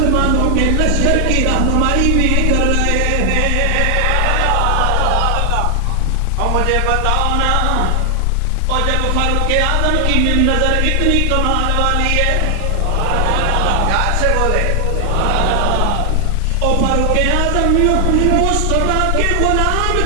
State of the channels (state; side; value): different; both; correlation 0.00